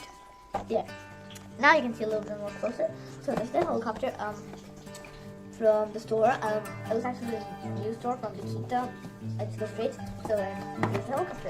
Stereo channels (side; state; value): both; identical; correlation 1.00